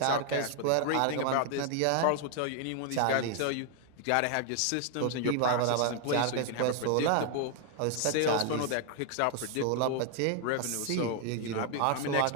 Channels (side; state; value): both; different; correlation 0.00